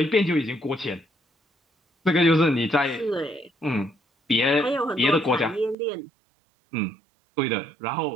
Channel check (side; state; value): left; drops out; at 5.8 s